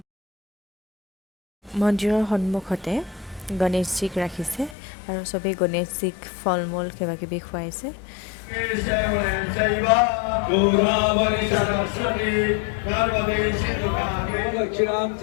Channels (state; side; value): drops out; right; at 4.8 s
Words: মন্দিৰৰ সন্মুখতে গণেশজীক ৰাখিছে আৰু সবে গণেশজীক ফলমূল কিবা কিবি খুৱাইছে